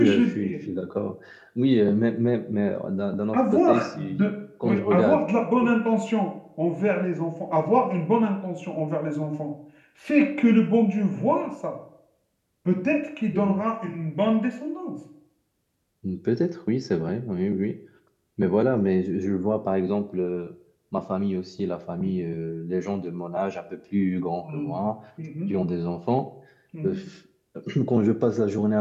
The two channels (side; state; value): both; identical; correlation 1.00